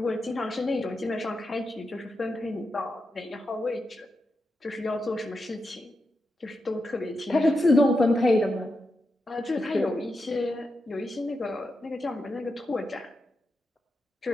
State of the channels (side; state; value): both; normal; correlation 0.87